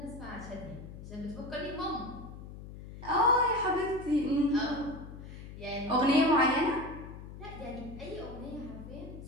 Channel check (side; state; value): left; noise; hum, 13 dB below the sound